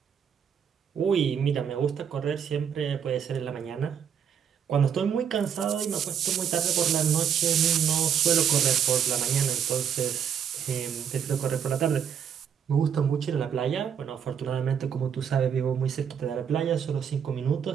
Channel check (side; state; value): left; quieter; 8.1 dB